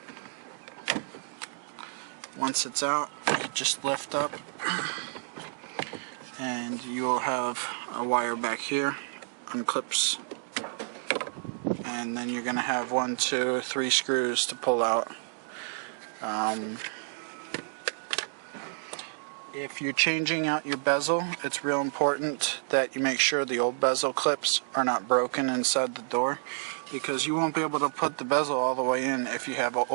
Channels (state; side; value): silent; left; digital silence